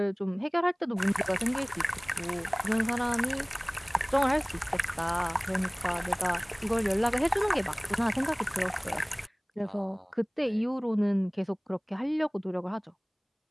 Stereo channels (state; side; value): identical; both; correlation 1.00